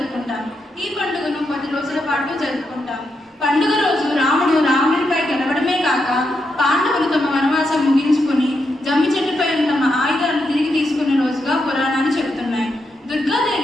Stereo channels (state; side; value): normal; both; correlation 0.83